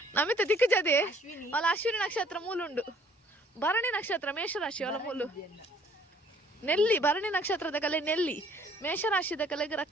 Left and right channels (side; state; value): both; normal; correlation 0.59